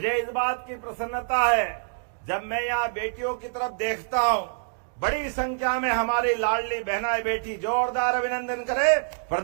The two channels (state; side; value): silent; left; digital silence